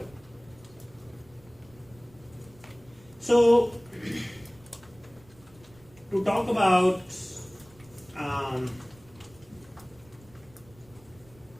So, to talk about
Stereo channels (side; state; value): right; noise; rumble, 25 dB below the sound